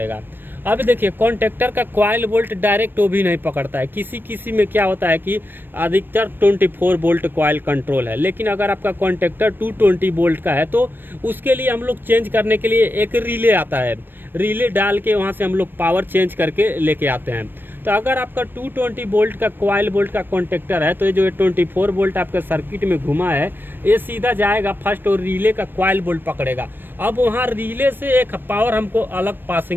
अब देखिए कॉन्टेक्टर का कॉइल बोल्ट डायरेक्ट वो भी नहीं पकड़ता है, किसी में क्या होता है कि अधिकतर 24 वोल्ट कॉइल कंट्रोल है। लेकिन अगर आपका कॉन्टेक्टर 220 वोल्ट का है तो उसके लिए हम लोग चेंज करने के लिए एक रिले आता है, रिले डाल के वहाँ से हम लोग पावर चेंज करके लेके आते हैं। तो अगर आपका 220 वोल्ट का कॉइल बोल्ट का कॉन्टेक्टर है तो ये जो 24 वोल्ट आपका सर्किट में घुमा है ये सीधा जाएगा फर्स्ट और रिले का कॉइल बोल्ट पकड़ेगा। अब वहाँ रिले से एक पावर हमको अलग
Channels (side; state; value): left; late; 0.095 ms